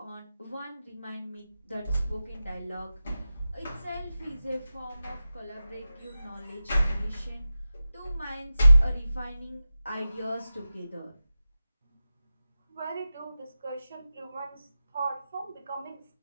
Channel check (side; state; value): both; inverted; correlation -0.92